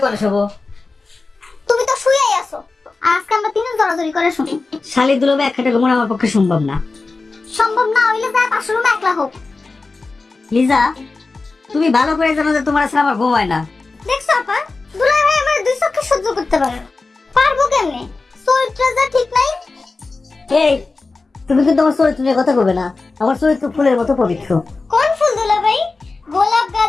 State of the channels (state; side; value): quieter; right; 3.8 dB